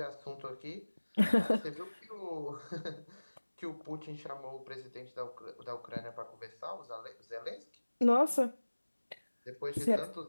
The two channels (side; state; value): both; inverted; correlation -1.00